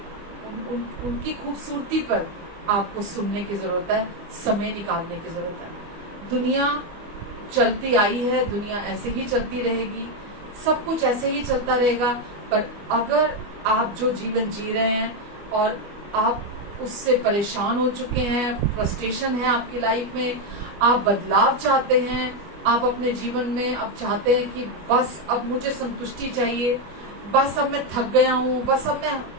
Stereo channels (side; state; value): left; late; 25 ms